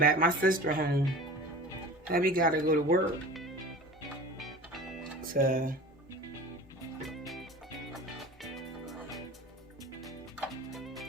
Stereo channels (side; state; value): both; normal; correlation 0.39